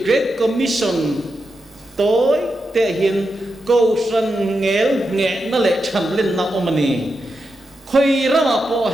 Great Commission tối thể hiện cầu sản nghe nó lại chăm lên nào ông này khơi ra mà bỏ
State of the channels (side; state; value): both; normal; correlation 0.87